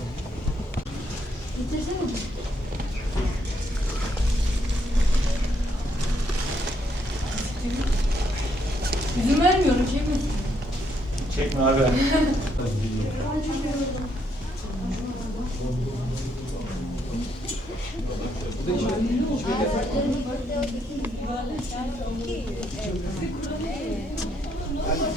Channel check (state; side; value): normal; both; correlation 0.74